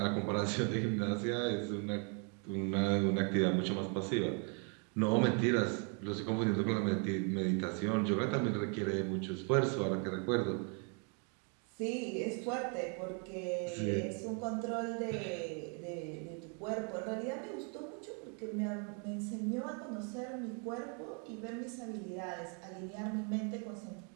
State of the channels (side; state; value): left; quieter; 38.6 dB